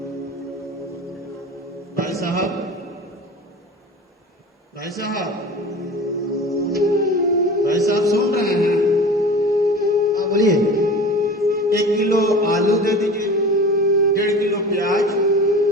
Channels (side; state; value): both; normal; correlation 0.37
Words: भाई साहब, भाई साहब, भाई साहब सुन रहे हैं? हाँ बोलिए। 1 किलो आलू दे दीजिए, 1.5 किलो प्याज,